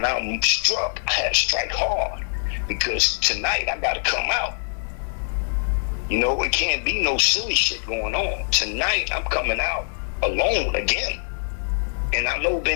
I struck, I had to strike hard. Because tonight I got to come out. You know, it can't be no silly shit going on. Tonight I'm coming out alone again. And I know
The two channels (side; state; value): right; silent; 63 dB below the other